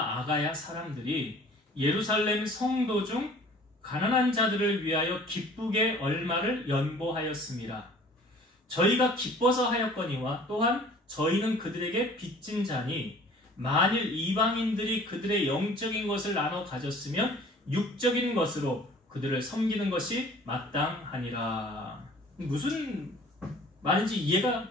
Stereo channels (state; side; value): normal; both; correlation 0.50